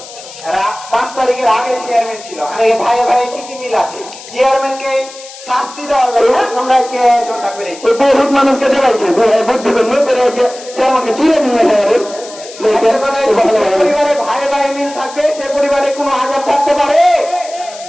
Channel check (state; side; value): noise; left; hiss, 16 dB below the sound